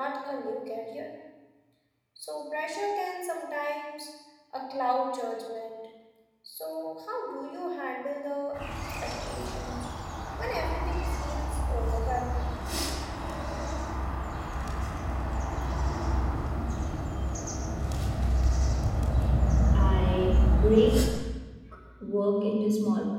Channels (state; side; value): identical; both; correlation 1.00